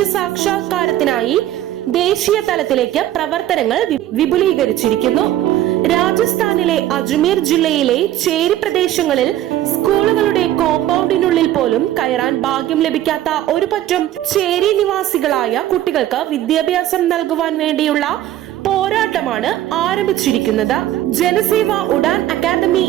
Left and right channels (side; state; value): left; quieter; 13.1 dB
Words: ദേശീയ തലത്തിലേക്ക് പ്രവർത്തനങ്ങൾ വിപുലീകരിച്ചിരിക്കുന്നു. രാജസ്ഥാനിലെ അജ്മീർ ജില്ലയിലെ ചേരി പ്രദേശങ്ങളിൽ സ്കൂളുകളുടെ കോമ്പൗണ്ടിനുള്ളിൽ പോലും കയറാൻ ഭാഗ്യം ലഭിക്കാത്ത ഒരു പറ്റം ചേരി നിവാസികളായ കുട്ടികൾക്ക് വിദ്യാഭ്യാസം നൽകുവാൻ വേണ്ടിയുള്ള പോരാട്ടമാണ് ആരംഭിച്ചിരിക്കുന്നത്. ജനസേവ ഉഡാൻ അക്കാദമി